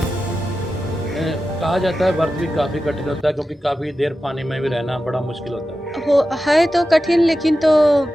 हैं। कहा जाता है व्रत भी काफ़ी कठिन होता है, क्योंकि काफ़ी देर पानी में भी रहना बड़ा मुश्किल होता है तो कठिन, लेकिन तो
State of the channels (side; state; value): both; normal; correlation 0.92